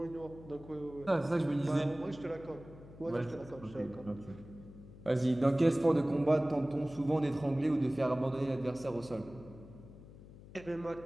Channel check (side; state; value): left; noise; hum, 18 dB below the sound